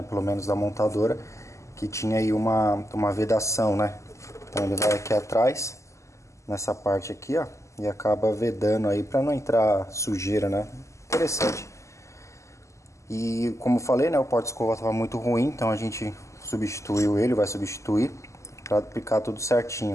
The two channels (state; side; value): late; right; 0.14 ms